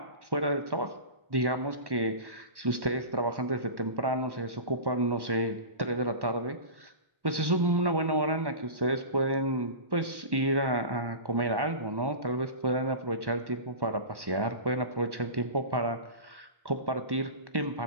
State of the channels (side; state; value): left; late; 1.1 ms